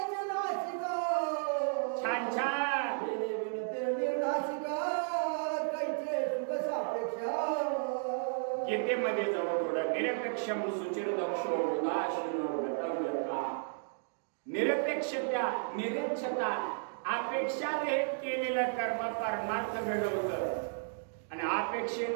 छान छान. गीतेमध्ये जाऊ थोडं. निरपेक्षम सुचिरदक्षो उदासीनो गतव्यथा. निरपेक्षता निरीक्षता अपेक्षा रहित केलेलं कर्म परमार्थ घडवतं आणि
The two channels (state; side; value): silent; left; digital silence